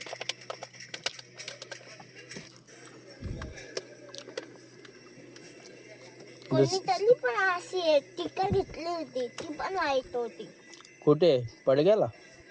कोणीतरी पण अशी टिकर घेतली होती. ती पण वाईट होती. कुठे पडग्याला.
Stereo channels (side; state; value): both; identical; correlation 1.00